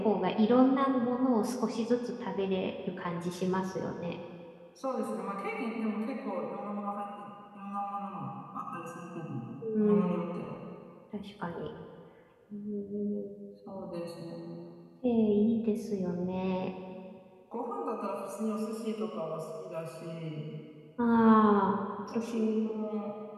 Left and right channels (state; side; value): identical; both; correlation 1.00